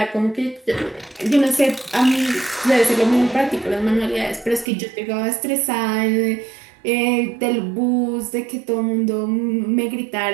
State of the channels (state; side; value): drops out; left; at 4.7 s